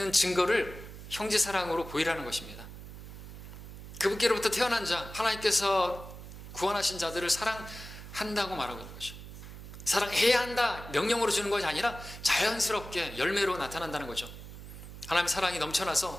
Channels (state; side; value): noise; right; hum, 13 dB below the sound